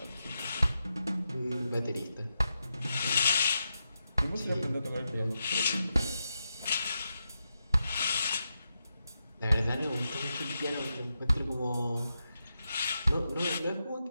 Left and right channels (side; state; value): both; inverted; correlation -0.87